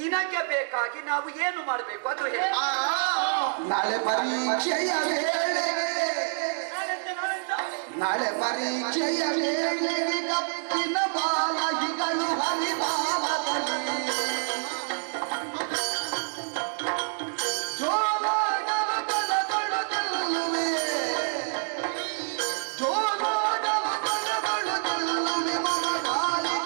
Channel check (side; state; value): left; silent; 60 dB below the other